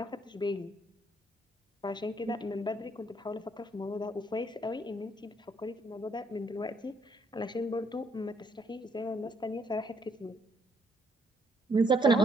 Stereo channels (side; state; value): both; normal; correlation 0.70